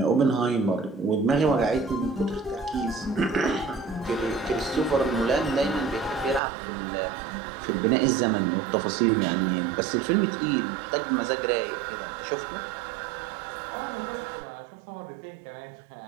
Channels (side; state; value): left; drops out; at 6.4 s